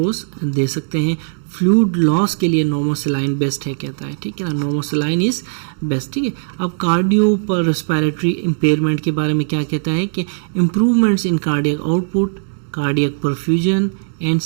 दे सकते हैं। फ्लूइड लॉस के लिए नॉर्मोसलाइन बेस्ट है कहता है, ठीक है ना, नॉर्मोसलाइन इज बेस्ट, ठीक है। अब कार्डियो पर रेस्पिरेटरी इम्पेयरमेंट के बारे में क्या कहता है कि improvements in cardiac output, cardiac perfusion and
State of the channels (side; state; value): left; silent; digital silence